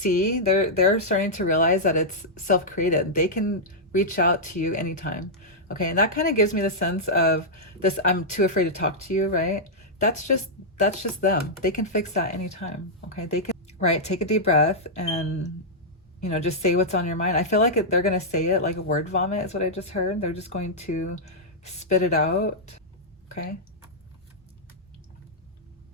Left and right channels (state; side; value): normal; both; correlation -0.08